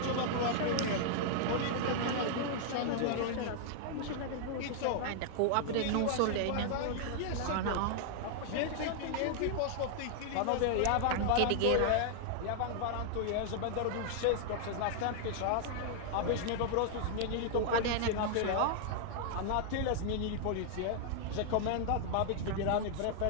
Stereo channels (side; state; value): both; different; correlation -0.01